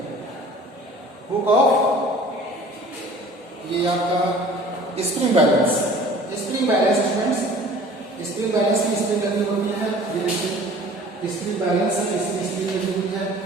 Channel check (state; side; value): normal; both; correlation 0.47